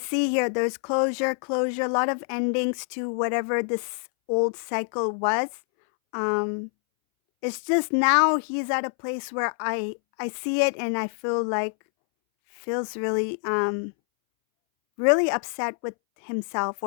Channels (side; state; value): right; silent; 61 dB below the other